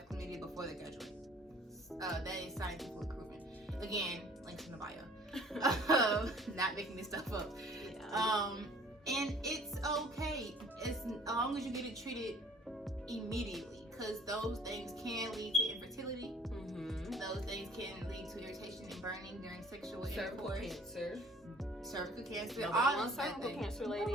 chlamydia before they graduate. That is scientifically proven. Again, links in the bio. Not making this stuff up. Yeah. And it's okay as long as you get it treated immediately, because those things can lead to infertility. Those things can lead to irritation and burning during sexual intercourse. Cervical cancer. Nobody wants cervical cancer, ladies.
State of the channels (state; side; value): normal; both; correlation 0.53